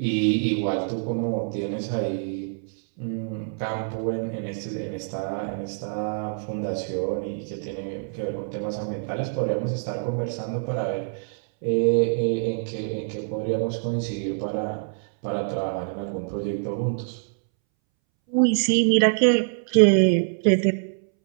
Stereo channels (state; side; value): silent; left; 61 dB below the other